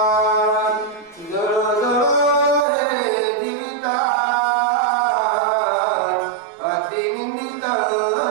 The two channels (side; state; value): left; drops out; at 2.7 s